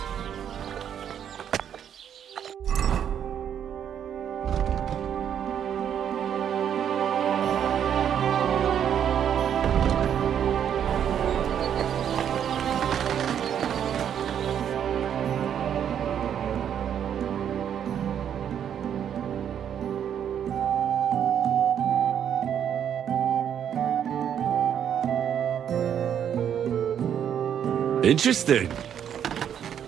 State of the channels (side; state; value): left; quieter; 9.0 dB